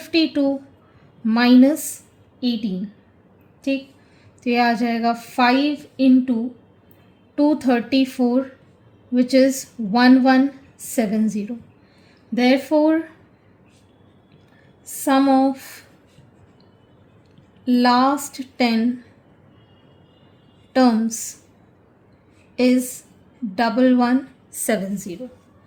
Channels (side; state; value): both; identical; correlation 1.00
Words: minus 18. ठीक, तो ये आ जाएगा 5 into 234 which is 1170. Therefore, sum of last 10 terms is 1170.